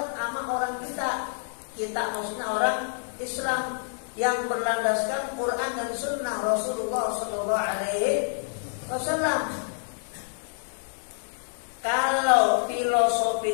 sama orang kita. Kita maksudnya orang Islam yang berlandaskan Quran dan Sunnah Rasulullah SAW. Kalau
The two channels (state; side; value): silent; right; 60 dB below the other